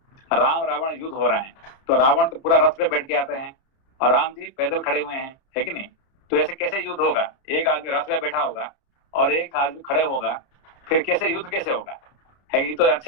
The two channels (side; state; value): right; late; 30 ms